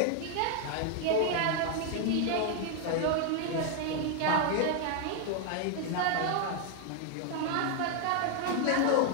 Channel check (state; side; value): different; both; correlation 0.00